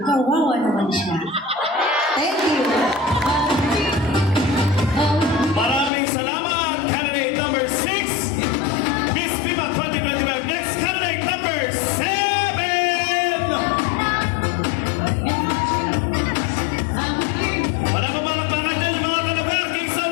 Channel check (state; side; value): drops out; right; at 5.9 s